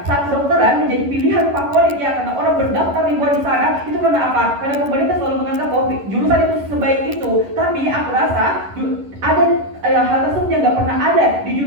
saat kedokteran menjadi pilihan favorit ya karena orang berdaftar ribuan di sana, itu karena apa? Karena pemerintah selalu menganggap bahwa jurusan itu sebaik itu. Tapi aku rasa ada hal tersebut yang nggak pernah ada di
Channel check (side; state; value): left; late; 11 ms